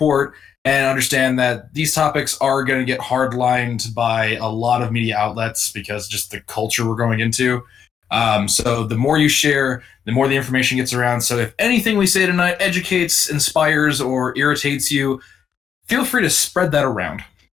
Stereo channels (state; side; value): quieter; right; 7.8 dB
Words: and understand that these topics are going to get hardlined by a lot of media outlets because just the culture we're going into. So the more you share, the more the information gets around. So if anything we say tonight educates, inspires, or irritates you, feel free to spread that around.